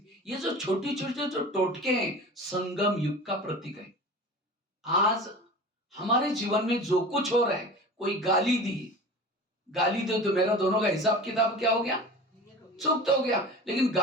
ये जो छोटी छोटी जो टोटके हैं संगम युग का प्रतीक है। आज हमारे जीवन में जो कुछ हो रहा है, कोई गाली दे तो मेरा दोनों का हिसाब किताब क्या हो गया, चुप तो हो गया, लेकिन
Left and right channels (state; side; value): normal; both; correlation 0.36